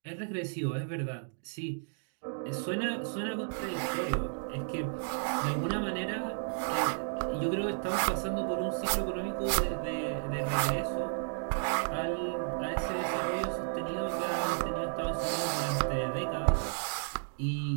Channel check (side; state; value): left; silent; digital silence